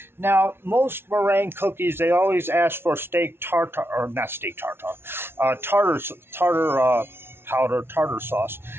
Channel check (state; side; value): late; left; 0.12 ms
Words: Now, most meringue cookies, they always ask for steak tartare, or not steak tartare, tartar powder, tartar sauce.